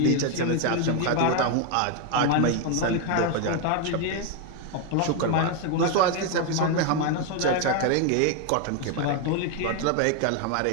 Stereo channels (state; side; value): different; both; correlation 0.01